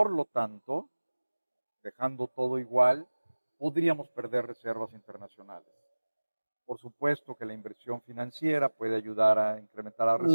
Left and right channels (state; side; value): inverted; both; correlation -1.00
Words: lo tanto, dejando todo igual, podríamos perder reservas internacionales. Por supuesto que la inversión financiera puede ayudar a incrementar las Ujú.